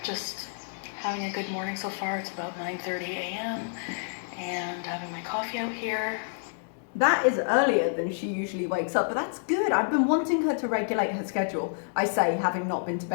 just having a good morning so far. It's about 9:30 a.m. and having my coffee out here. That is earlier than she usually wakes up, but that's good. I've been wanting her to regulate her schedule. I say, having not been to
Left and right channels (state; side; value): silent; right; digital silence